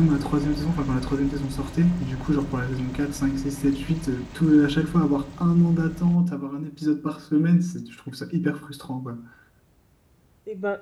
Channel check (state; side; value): identical; both; correlation 1.00